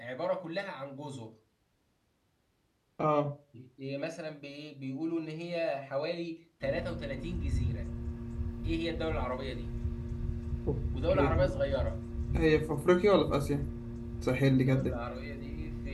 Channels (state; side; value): identical; both; correlation 1.00